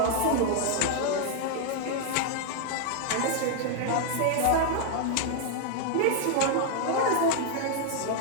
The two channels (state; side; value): different; both; correlation 0.00